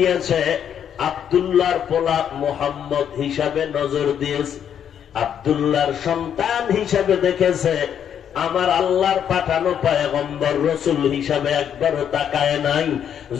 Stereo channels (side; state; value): right; quieter; 8.9 dB